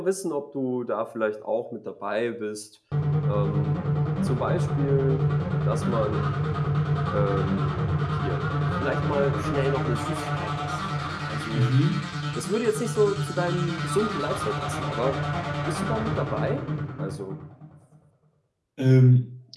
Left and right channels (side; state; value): both; identical; correlation 1.00